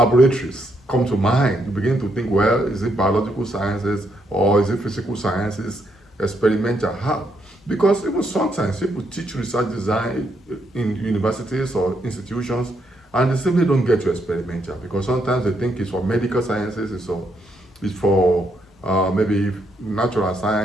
come to mind. You begin to think, well, is it biological sciences or is it physical sciences? Experimental, how? Because even sometimes people teach research design in universities or institutions, and they simply don't get to experimental because sometimes they think it's for medical sciences, it's for maybe natural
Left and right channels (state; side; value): normal; both; correlation 0.77